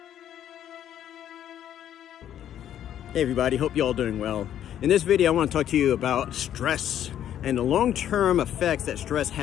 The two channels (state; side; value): quieter; right; 10.7 dB